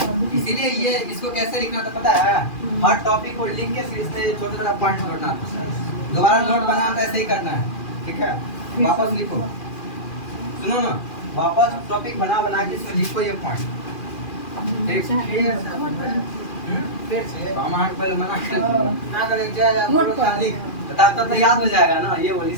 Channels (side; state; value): right; late; 2.4 ms